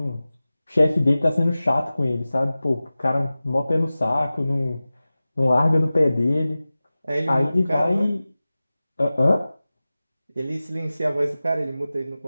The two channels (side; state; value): both; inverted; correlation -0.97